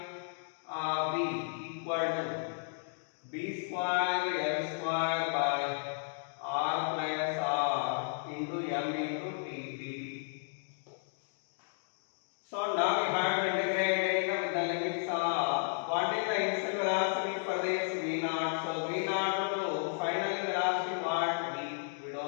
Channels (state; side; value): silent; right; digital silence